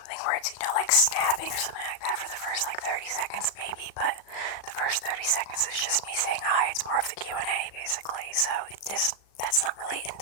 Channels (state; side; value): late; right; 37 ms